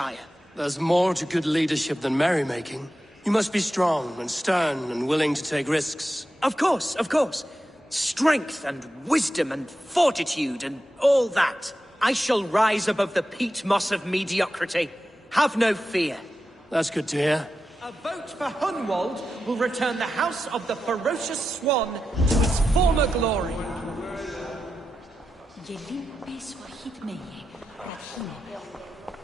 There's more to good leadership than merrymaking. You must be strong and stern and willing to take risks. Of course, of course. Strength and wisdom and fortitude and all that. I shall rise above the peat moss of mediocrity. Have no fear. That's good to hear. A vote for Hunwald will return the House of the Ferocious Swan to its former glory.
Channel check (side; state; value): both; normal; correlation 0.90